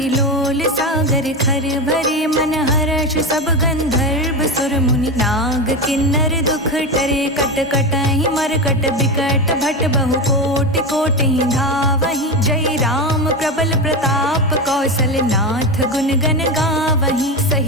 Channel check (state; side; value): normal; both; correlation 0.18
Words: लोल। सागर खर भरे मन हर्ष, सब गंधर्व सुर मुनि। नाग किन्नर दुख टरे, कट कटहि मरकट बिकट। भट बहु कोटि कोटि धावहि, जय राम प्रबल प्रताप। कौशल नाथ गुण गन गावहि,